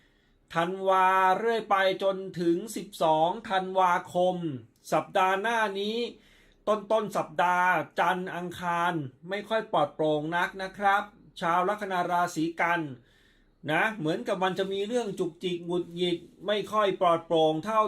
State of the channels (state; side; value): identical; both; correlation 1.00